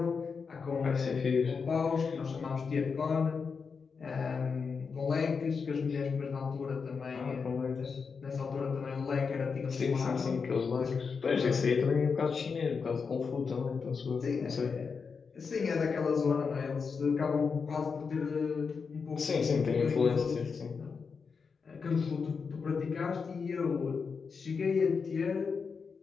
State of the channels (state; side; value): quieter; right; 5.4 dB